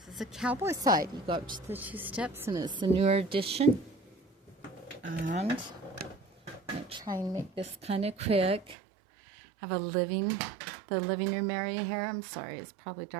cowboy side. You go up to the 2 steps, and it's the newer addition. And I'm going to try and make this kind of quick. I have the living room area here. I'm sorry, it's probably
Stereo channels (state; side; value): drops out; left; at 8.8 s